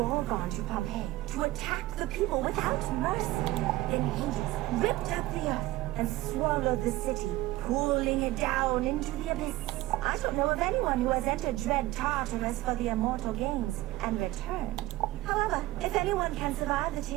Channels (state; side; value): quieter; left; 17.0 dB